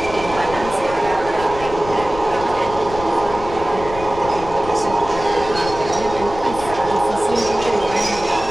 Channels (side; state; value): left; noise; rumble, 12 dB below the sound